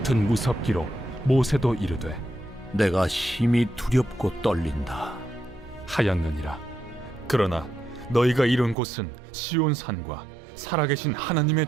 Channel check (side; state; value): left; drops out; at 8.8 s